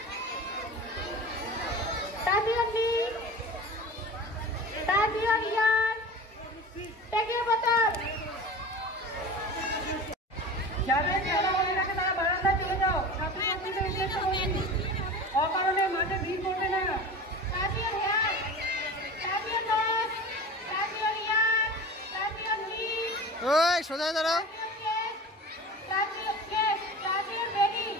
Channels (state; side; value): normal; both; correlation 0.35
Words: তাজিয়া লিগ তাজিয়া ইয়ার টেকে বোতল। যাদের খেলা মনে রাখে তারা বারান্দায় চলে যাও। ছাত্রছাত্রীদের উদ্দেশ্য বলছি, অকারণে মাঠে ভিড় করবে না। তাজিয়া ইয়ার তাজিয়া দশ তাজিয়া ইয়ার তাজিয়া লিগ ওই সোজা দাঁড়াও। তাজিয়া চেস তাজিয়া বেলি